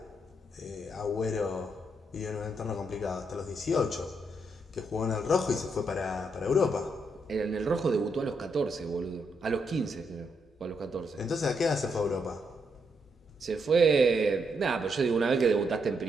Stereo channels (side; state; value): both; normal; correlation 0.78